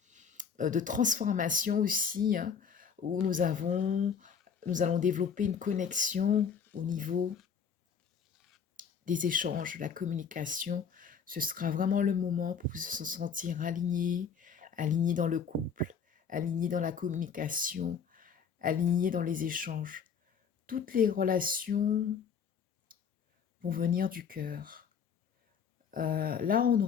de transformation aussi, hein, où nous allons développer une connexion au niveau des échanges, la communication. Ce sera vraiment le moment pour se sentir aligné, aligné dans le couple, aligné dans la communication, aligné dans les échanges. Toutes les relations vont venir du cœur. Là, on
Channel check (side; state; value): right; quieter; 6.7 dB